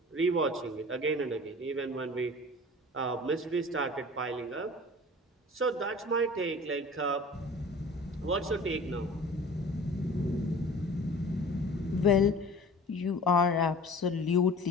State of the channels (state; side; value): normal; both; correlation 0.42